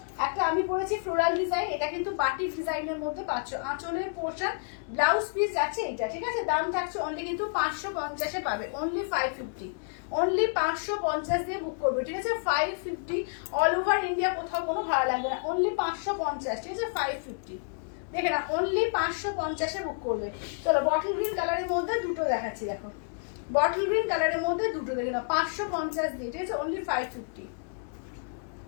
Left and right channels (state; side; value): silent; right; digital silence